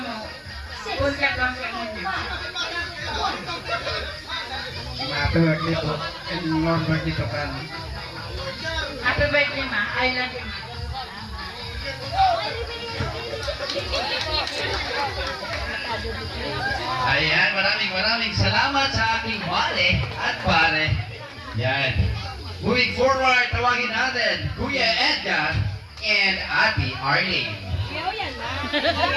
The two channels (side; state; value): both; identical; correlation 1.00